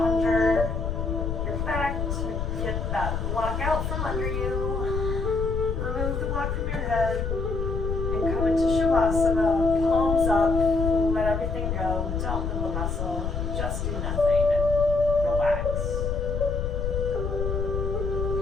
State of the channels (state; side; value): noise; left; rumble, 2 dB below the sound